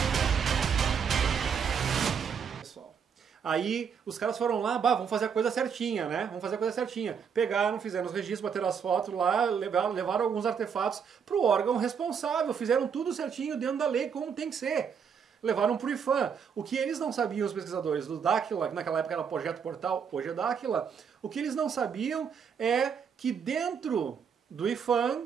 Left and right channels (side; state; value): left; quieter; 6.9 dB